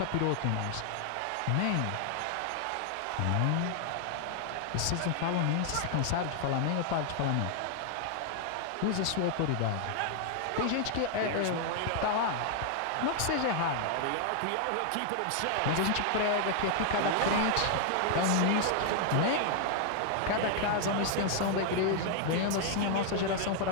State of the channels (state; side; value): different; both; correlation 0.00